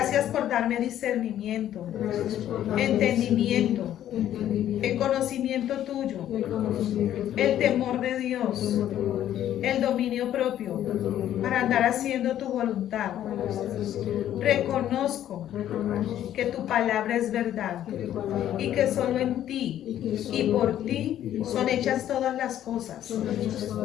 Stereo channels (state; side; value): quieter; right; 11.6 dB